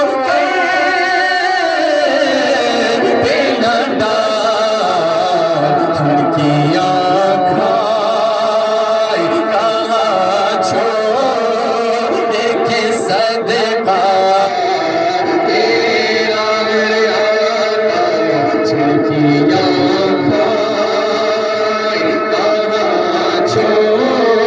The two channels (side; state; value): both; identical; correlation 1.00